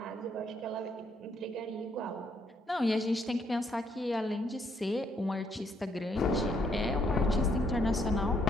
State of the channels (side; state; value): both; normal; correlation 0.72